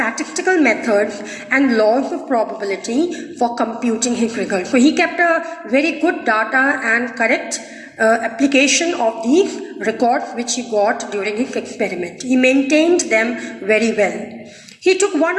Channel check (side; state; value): both; identical; correlation 1.00